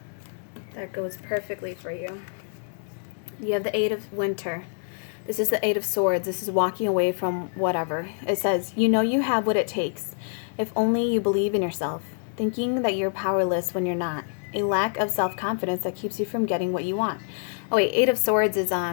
that goes perfectly for you. You have the Eight of Winter. This is the Eight of Swords. This is walking away from whatever. It says, you have what it takes. If only you believe in yourself. Thinking that you're powerless when you're not. A lack of self-confidence that keeps you from getting what you want. Oh wait, Eight of Swords is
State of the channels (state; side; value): silent; right; digital silence